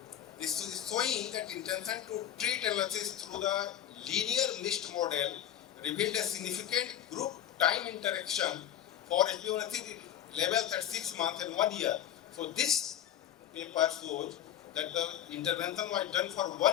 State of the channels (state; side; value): quieter; right; 10.8 dB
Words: This is showing that intention to treat analysis through the linear mixed model revealed a significant group time interaction for HbA1c levels at 6 months and 1 year. So this paper shows that the intervention was done for